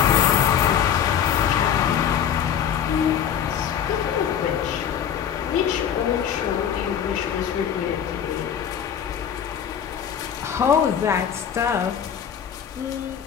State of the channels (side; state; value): right; quieter; 8.6 dB